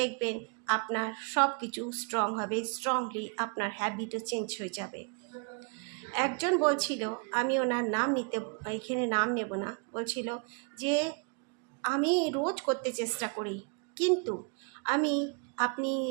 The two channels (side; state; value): left; quieter; 36.1 dB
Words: আপনার সব কিছু স্ট্রং হবে, স্ট্রংলি আপনার হ্যাবিটও চেঞ্জ হয়ে যাবে। একজন বলছিল, আমি ওনার নাম এখানে নাম নেব না, বলছিল যে আমি রোজ করতে চেষ্টা করি, কিন্তু আমি আপনি